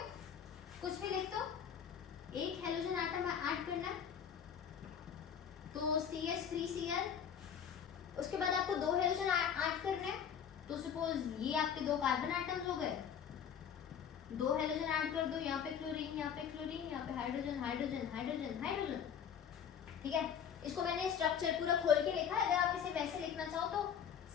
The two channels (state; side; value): quieter; right; 8.1 dB